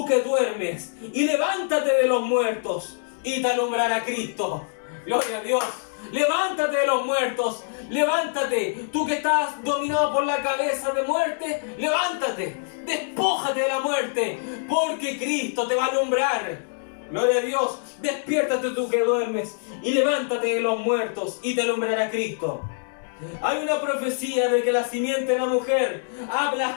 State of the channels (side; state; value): right; silent; digital silence